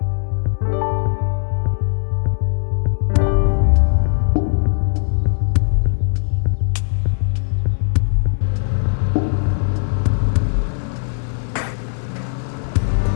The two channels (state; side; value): silent; right; digital silence